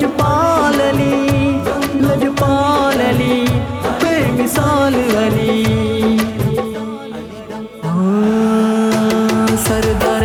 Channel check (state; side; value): identical; both; correlation 1.00